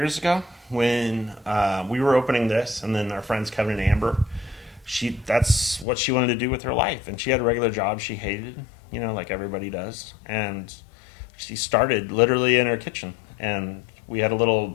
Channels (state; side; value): drops out; right; at 5.9 s